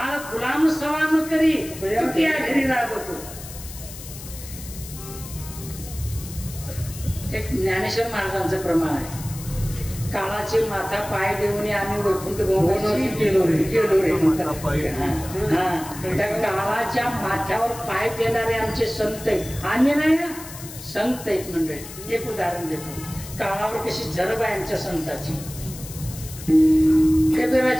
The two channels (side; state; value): left; noise; hiss, 14 dB below the sound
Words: गुलाम सलाम करी घरी राबवतो. एक ज्ञानेश्वर महाराजांचं प्रमाण आहे. काळाचे माथा पाय देऊन आम्ही वैकुंठ गेलो रे. त्या काळाच्या माथ्यावर पाय देणारे आमचे संत आहेत. आम्ही नाही ना, संत आहेत मंडळी. एक उदाहरण देतो. काळावर कशी जरब आहे आमच्या संताची.